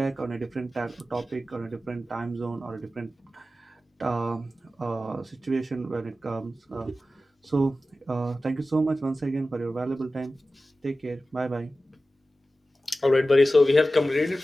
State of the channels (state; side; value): normal; both; correlation 0.94